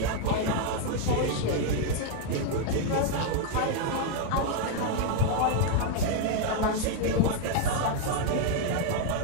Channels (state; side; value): different; both; correlation 0.00